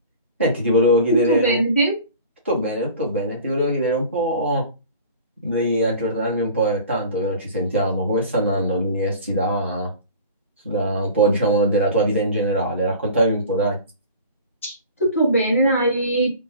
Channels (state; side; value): inverted; both; correlation -0.41